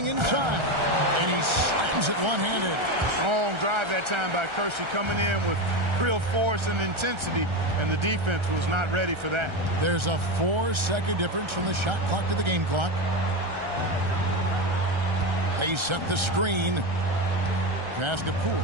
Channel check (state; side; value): late; left; 1.3 ms